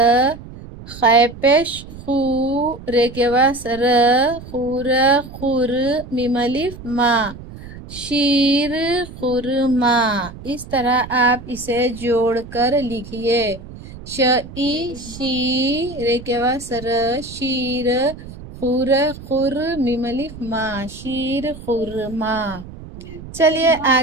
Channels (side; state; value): right; noise; rumble, 15 dB below the sound